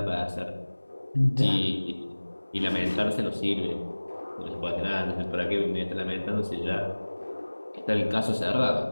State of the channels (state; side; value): inverted; both; correlation -1.00